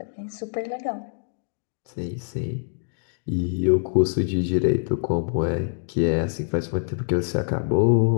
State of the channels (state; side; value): silent; right; digital silence